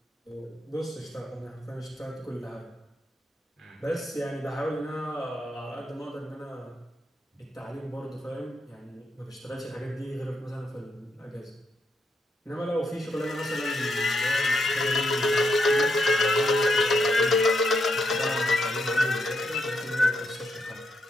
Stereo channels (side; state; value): both; normal; correlation 0.80